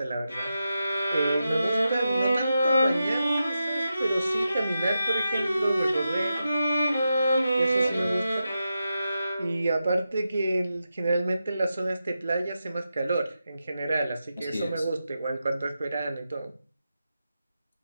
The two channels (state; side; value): inverted; both; correlation -0.89